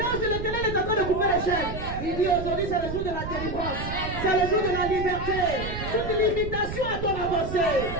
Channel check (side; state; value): right; noise; rumble, 7 dB below the sound